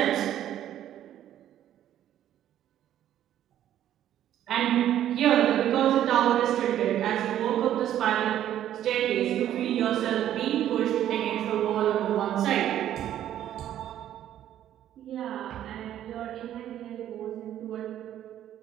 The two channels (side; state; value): left; quieter; 11.5 dB